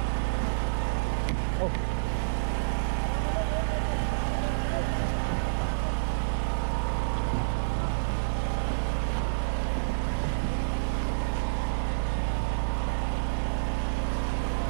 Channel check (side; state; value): left; silent; 59 dB below the other